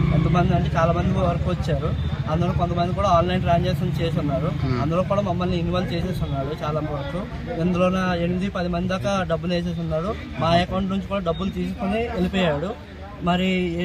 ఎంతమంది అంటే చాలా మంది వరకు వచ్చారు. అందులో కొంతమంది కూడా ఆన్లైన్ ట్రాన్సాక్షన్ చేసి ఉన్నారు. అందులో కూడా మమ్మల్ని ఇన్వాల్వ్ చేసేసి ఉన్నాడు చాలా వరకు. ఇందులో 8-10 మంది దాకా డబ్బులు వేసేసి ఉన్నాడు. మా అకౌంట్ నుంచి కూడా డబ్బులు తీసుకొని వెళ్ళిపోయాడు. మరి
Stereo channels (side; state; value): both; identical; correlation 1.00